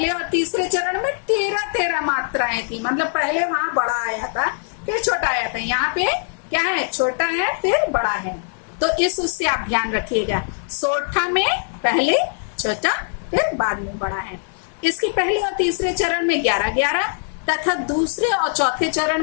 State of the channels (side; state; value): right; silent; 65 dB below the other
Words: और तीसरे चरण में 13-13 मात्राएं थी। मतलब पहले वहां बड़ा आया था, फिर छोटा आया था। यहाँ पे क्या है, छोटा है फिर बड़ा है। तो इस उससे आप ध्यान रखिएगा। सोठा में पहले छोटा फिर बाद में बड़ा है। इसके पहले और तीसरे चरण में 11-11 तथा दूसरे और चौथे चरण